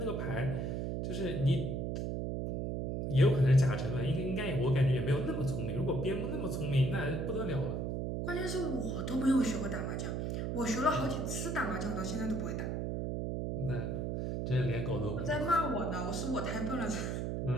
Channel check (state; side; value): noise; right; hum, 1 dB below the sound